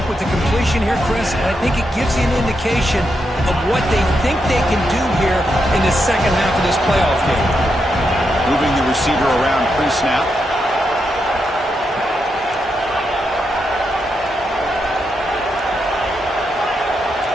with the completion here, Chris, but I think it gives you an indication of what they think they can do here in the second half of this playoff game. Moving the receiver around pre-snap.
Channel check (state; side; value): normal; both; correlation 0.83